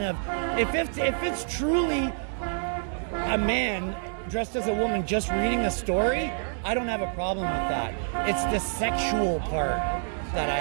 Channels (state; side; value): silent; left; digital silence